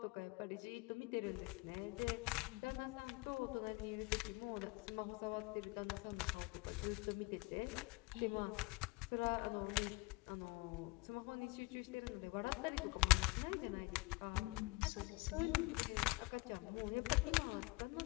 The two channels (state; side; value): quieter; right; 25.8 dB